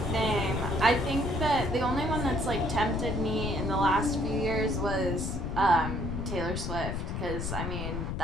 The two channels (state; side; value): noise; left; rumble, 3 dB below the sound